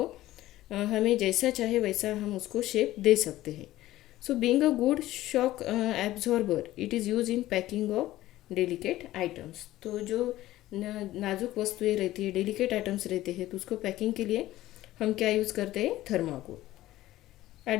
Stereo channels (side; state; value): right; quieter; 15.5 dB